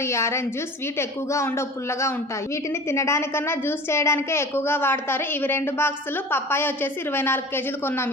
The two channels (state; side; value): normal; both; correlation 0.39